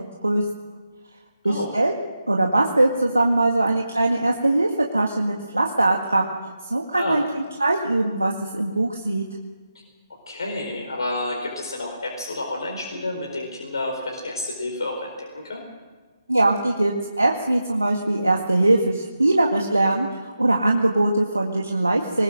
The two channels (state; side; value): inverted; both; correlation -0.89